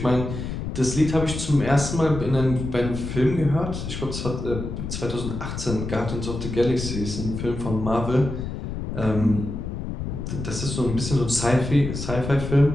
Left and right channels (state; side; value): noise; left; rumble, 6 dB below the sound